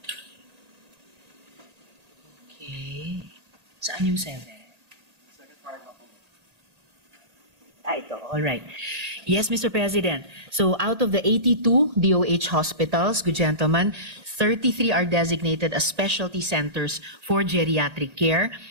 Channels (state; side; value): late; left; 1.9 ms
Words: Okay. Saan yung 7? Ito. All right. Yes, Mr. President. So out of the 82 DOH hospitals, good gentlemen, 33 are designated as specialty centers for geriatric care.